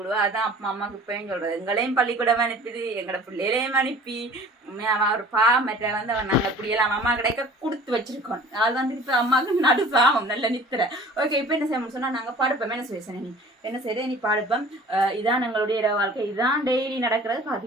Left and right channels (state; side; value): normal; both; correlation 0.46